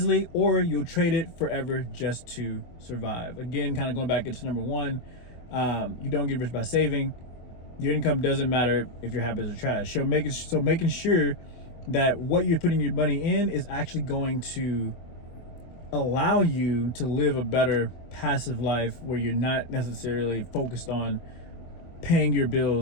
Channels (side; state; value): right; late; 24 ms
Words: or you'll trade it forever just to survive. Again, kind of going back into number 1, you don't get rich by saving. Your income doesn't matter if your habits are trash. So making sure that what you're putting your money in is actually going to allow you to live a better passive life where you're not necessarily focused on paying your